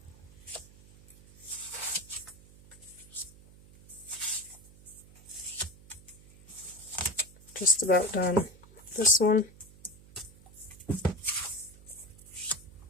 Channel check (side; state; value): right; noise; hum, 22 dB below the sound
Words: Just about done with this one.